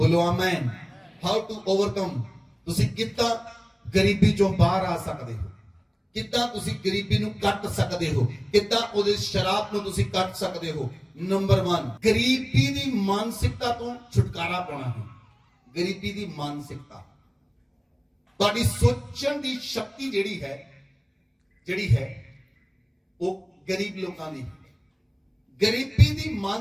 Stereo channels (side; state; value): both; identical; correlation 1.00